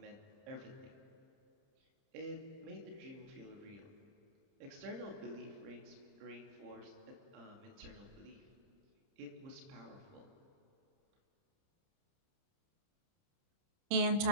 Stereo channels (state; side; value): late; left; 30 ms